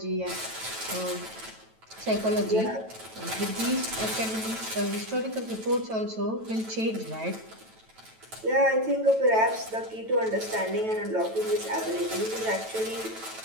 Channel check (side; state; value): left; late; 9.1 ms